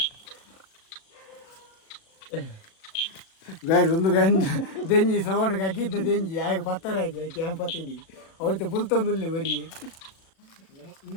ಒಂದು ದೆಂಜಿ ಸವಣಿಗೆ ಅಗ್ಗಿದ್ದ ದೆಂಜಿ ಆಗ ಪತ್ತಾರೆ ಆಗಿ ಆಕೆ ಅಂಪತ್ತೀನಿ ಅವ್ರದ್ದು ಪುಲ್ತೊಂದುಲ್ಲಿ ಬರೀ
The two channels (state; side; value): late; right; 36 ms